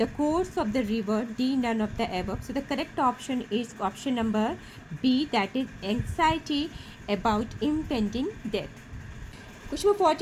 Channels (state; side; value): identical; both; correlation 1.00